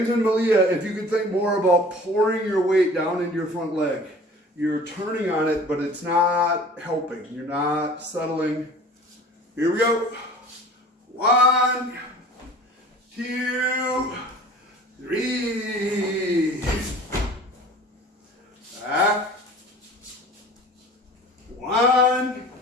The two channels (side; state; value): both; normal; correlation 0.45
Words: and Malia, if you could think more about pouring your weight down into your front leg. You're turning on it, but it's not helping. You're not settling. Here we go. 1, 2, 3. Back. 1,